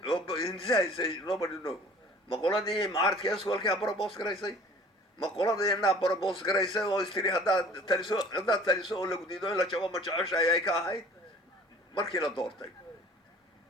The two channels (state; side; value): normal; both; correlation 0.49